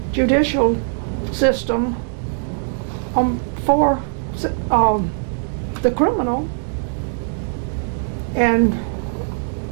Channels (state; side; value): silent; left; digital silence